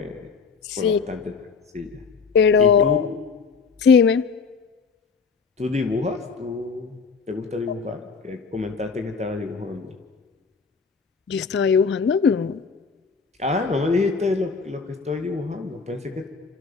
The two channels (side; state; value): right; quieter; 5.2 dB